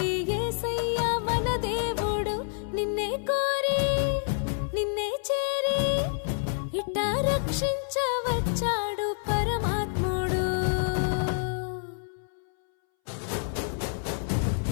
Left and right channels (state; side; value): silent; right; 59 dB below the other